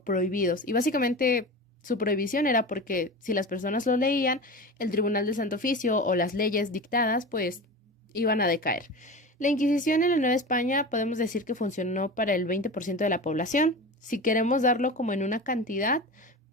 prohibidos. Y básicamente su prohibición era porque si las personas lo leían, el Tribunal del Santo Oficio o las leyes dictadas pues iban a decaer. La Inquisición en la Nueva España podemos decir que funcionó para el 20% de la población. Si queremos darlo como en una cantidad,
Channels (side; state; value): both; normal; correlation 0.29